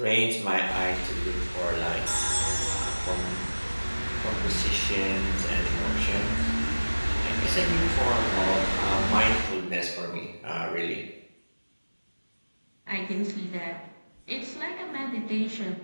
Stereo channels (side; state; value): both; inverted; correlation -1.00